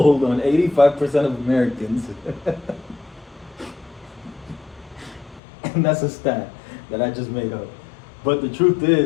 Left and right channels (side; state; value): right; drops out; at 5.4 s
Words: on 85% of Americans. And that's a stat that I just made up. But the truth